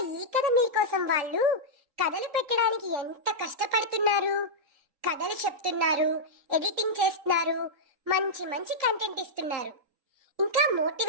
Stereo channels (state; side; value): late; left; 3.8 ms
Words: ఈ కథ మీకోసం వాళ్ళు కథలు పెట్టడానికి ఎంత కష్టపడుతున్నారు. కథలు చెప్తున్నారు, ఎడిటింగ్ చేస్తున్నారు, మంచి మంచి కంటెంట్ ఇస్తున్నారు, ఇంకా